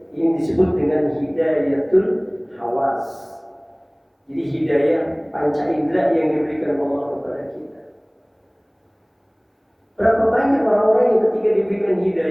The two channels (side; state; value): both; identical; correlation 1.00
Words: Ini disebut dengan hidayatul hawas. Jadi hidayah panca indera yang diberikan Allah kepada kita. Berapa banyak orang-orang yang ketika diberikan